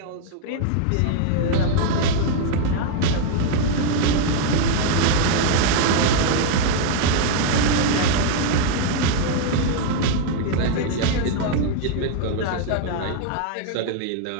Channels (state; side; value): different; both; correlation 0.00